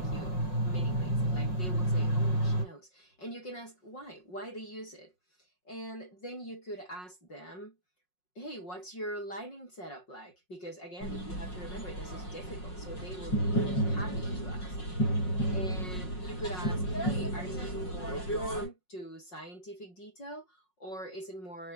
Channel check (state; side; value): late; right; 5.5 ms